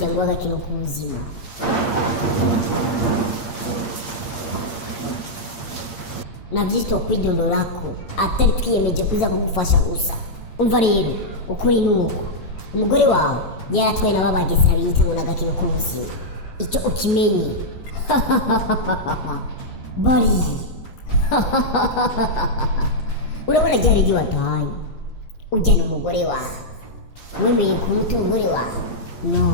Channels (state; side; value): late; right; 8.6 ms